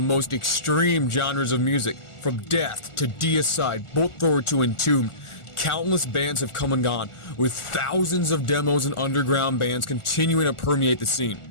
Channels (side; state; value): right; late; 1.4 ms